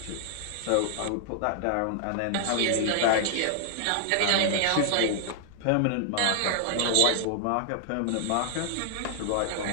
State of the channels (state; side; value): different; both; correlation 0.00